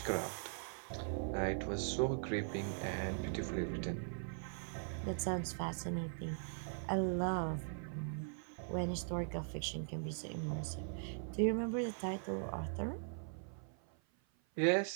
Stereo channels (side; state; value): left; silent; 51 dB below the other